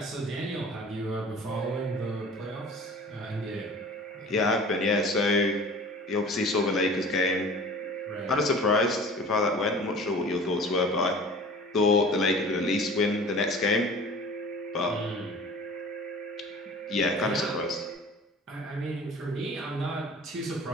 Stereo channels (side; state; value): both; normal; correlation 0.43